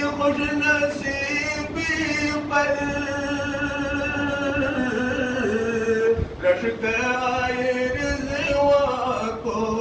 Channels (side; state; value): both; identical; correlation 1.00